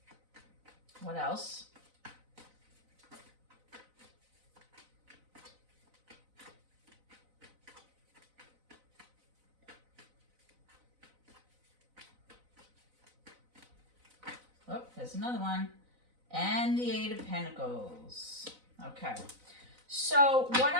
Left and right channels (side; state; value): left; late; 4.0 ms